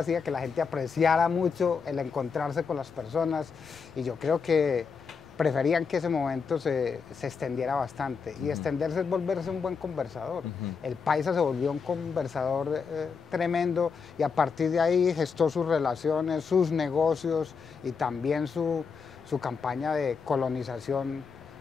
que la gente apreciara mucho el encontrarse con las personas y yo creo que preferían que ese momento se extendiera bastante. Y extenderse es volverse un buen conversador. El paisa se volvió un conversador tremendo y a partir de ahí gestó sus relaciones, sus negocios y también su campaña de colonización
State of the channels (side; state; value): right; quieter; 5.6 dB